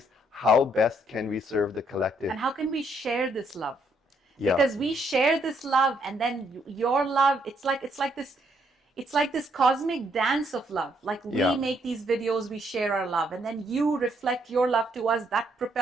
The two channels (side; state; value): both; normal; correlation 0.72